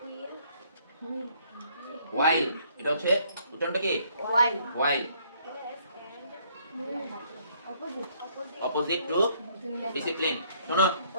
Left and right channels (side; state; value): both; inverted; correlation -0.65